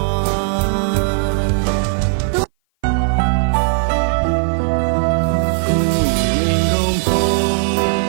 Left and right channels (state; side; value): silent; left; 57 dB below the other